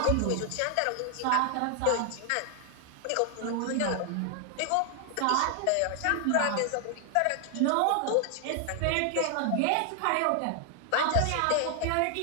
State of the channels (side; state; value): both; different; correlation 0.00